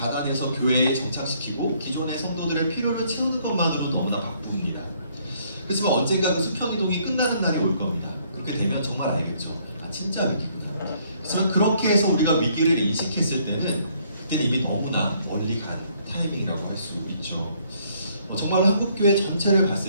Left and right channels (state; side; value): inverted; both; correlation -0.66